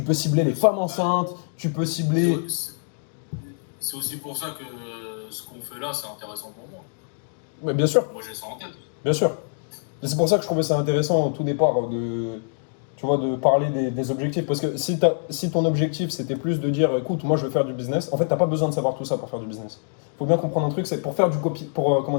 peux cibler les femmes enceintes, tu peux cibler... C'est aussi pour ça que ce qu'on fait là, c'est intéressant pour moi. Mais bien sûr. Moi, j'ai ça en tête. Bien sûr. Et c'est pour ça que je trouvais ça intéressant au tout départ tu vois, de parler des objectifs. Parce que si ton objectif c'était plus de dire écoute, moi je veux faire du business, en fait t'as pas besoin de savoir tout ça pour faire du business. Faut bien comprendre un truc, c'est pour faire du copy, comment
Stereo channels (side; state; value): right; silent; digital silence